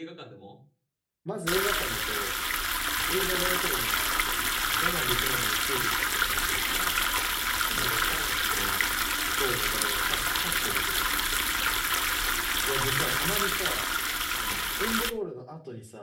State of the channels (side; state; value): both; identical; correlation 1.00